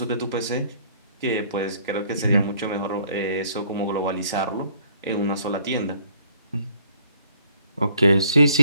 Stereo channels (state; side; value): inverted; both; correlation -0.61